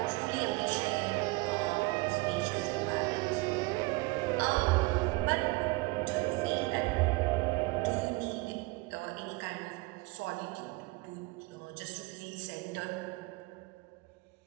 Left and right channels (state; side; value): quieter; left; 23.6 dB